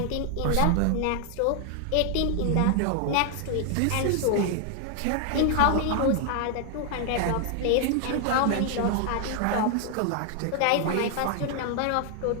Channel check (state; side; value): different; both; correlation 0.00